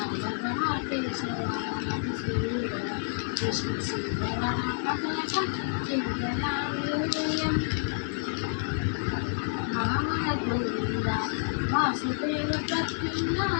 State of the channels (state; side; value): silent; right; digital silence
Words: కేశవ మధుసూదన విష్ణు సుందర అతనకం చింతయామి యూయం మామల గోవింద వాసుదేవ